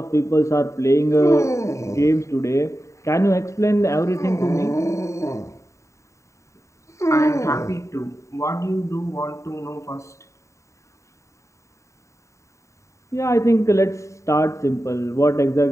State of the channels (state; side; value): late; right; 0.14 ms